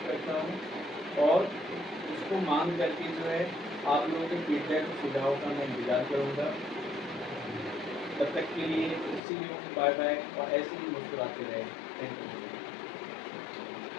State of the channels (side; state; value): right; drops out; at 9.2 s